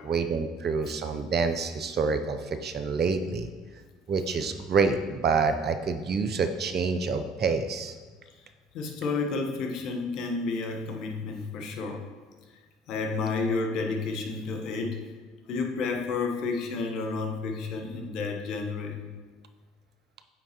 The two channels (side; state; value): both; normal; correlation 0.52